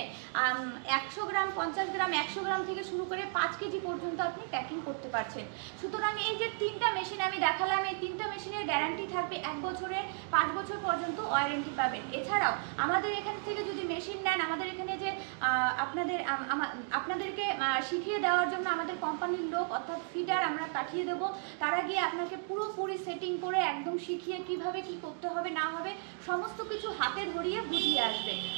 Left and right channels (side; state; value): left; silent; 55 dB below the other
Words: 100 গ্রাম, 50 গ্রাম, 100 গ্রাম থেকে শুরু করে 5 কেজি পর্যন্ত আপনি প্যাকিং করতে পারছেন। সুতরাং এই যে 3টা মেশিন আমি দেখালাম, এই 3টা মেশিনের গ্যারান্টি থাকবে 1 বছরের, 5 বছর পর্যন্ত ওয়ারেন্টি পাবেন। এছাড়াও আমাদের এখান থেকে যদি মেশিন নেন, আমাদের এখানে যে আপনাদেরকে শিখিয়ে দেওয়ার জন্য আমাদের কোম্পানির লোক অর্থাৎ ফিটার আমরা পাঠিয়ে দেব। তারা গিয়ে আপনাকে পুরোপুরি সেটিং করে একদম শিখিয়ে কিভাবে কি করতে হবে না হবে সমস্ত কিছু হাতে ধরিয়ে বুঝিয়ে আসবে।